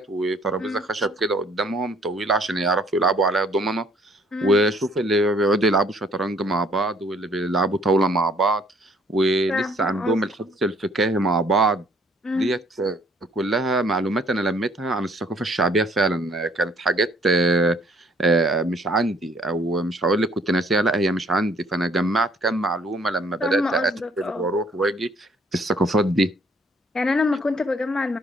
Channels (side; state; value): both; normal; correlation 0.61